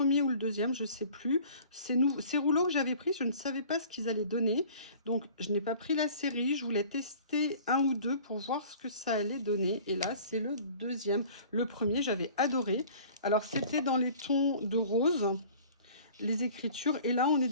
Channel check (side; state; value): both; inverted; correlation -0.47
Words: ou le deuxième, je ne sais plus, ces rouleaux que j'avais pris, je ne savais pas ce qu'ils allaient donner. Donc, je n'ai pas pris la série, je voulais tester un ou deux pour voir ce que ça allait donner. Et là, c'est le deuxième. Le premier, j'avais adoré. Alors, c'était dans les tons de rose, les écritures. Et là, on est